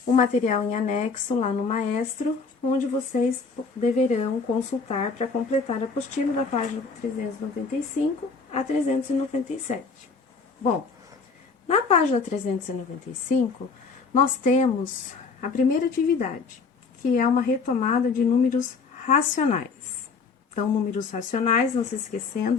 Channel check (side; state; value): right; quieter; 4.8 dB